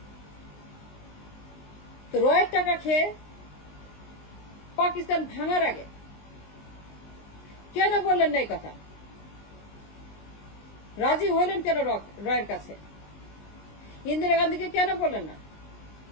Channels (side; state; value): right; late; 19 ms